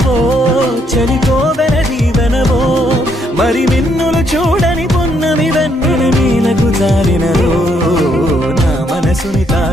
చలికోవెల దీవెనవో మరి మిన్నులు చూడని పొన్నమి వెన్నెల నీలకు జారినదో నా మనసుని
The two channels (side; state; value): both; normal; correlation 0.72